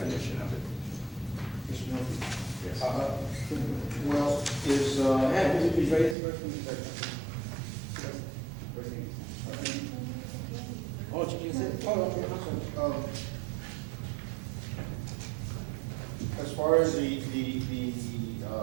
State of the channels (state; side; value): drops out; left; at 6.2 s